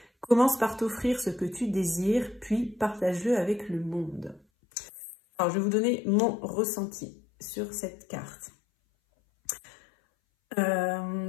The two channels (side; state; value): right; drops out; at 4.4 s